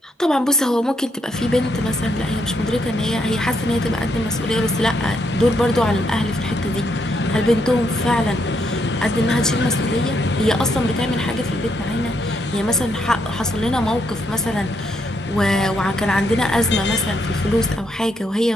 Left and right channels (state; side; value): normal; both; correlation 0.76